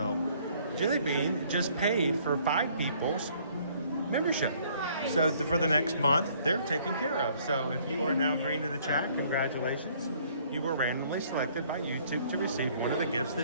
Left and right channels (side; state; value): both; inverted; correlation -0.61